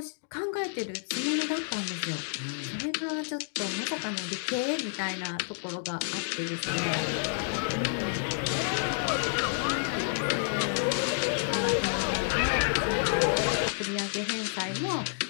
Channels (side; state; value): right; silent; digital silence